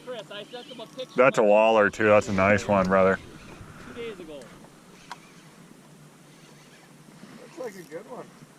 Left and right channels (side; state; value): both; identical; correlation 1.00